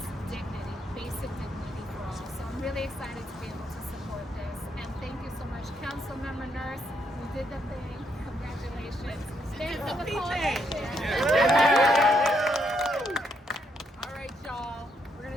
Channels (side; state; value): both; normal; correlation 0.76